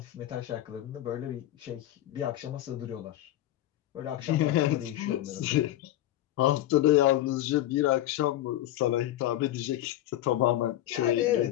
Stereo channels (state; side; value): quieter; right; 13.9 dB